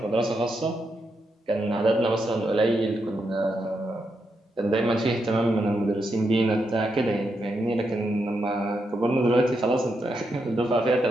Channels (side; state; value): both; normal; correlation 0.83